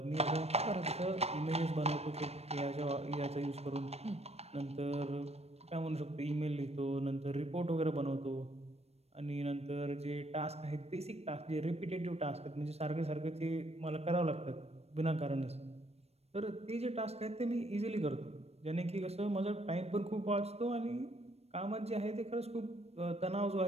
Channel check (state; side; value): late; left; 0.30 ms